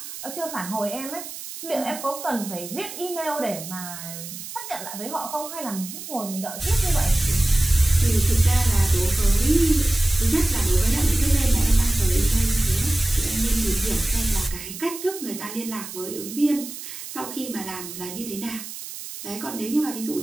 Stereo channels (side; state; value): right; noise; hiss, 11 dB below the sound